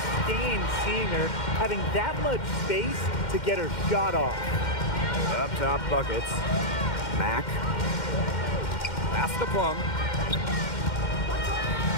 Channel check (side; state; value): right; late; 2.1 ms